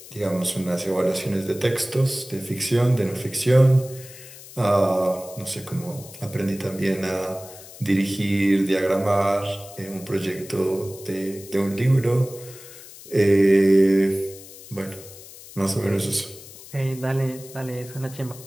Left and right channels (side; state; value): left; noise; hiss, 17 dB below the sound